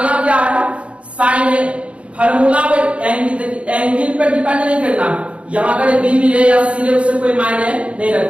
क्या है, साइन A फार्मूला पे एंगल पे डिपेंड नहीं करना, यहां अगर B मिले या C मिले उससे कोई मायने नहीं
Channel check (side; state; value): left; late; 0.061 ms